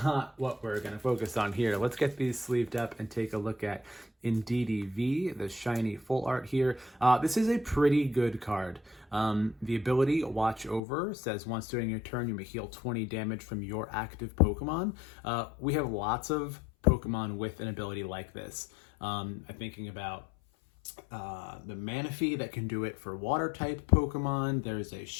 what we're going to focus on here. Let's get these sleeved up and take a look at Indeedee V, the shiny full art here. This is a pretty good card. The ability Watch Over says once during your turn you may heal 20 damage from your active Pokemon. We have lots of Pokemon with an ability like this. I'm thinking about the Manaphy that can do it for water type Pokemon. There's a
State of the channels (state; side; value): drops out; right; at 10.8 s